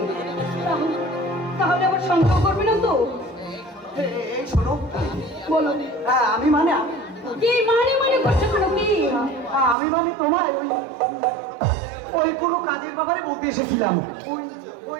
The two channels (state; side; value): drops out; left; at 9.8 s